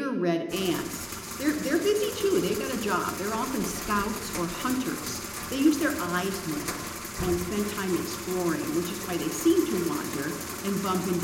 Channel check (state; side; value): identical; both; correlation 1.00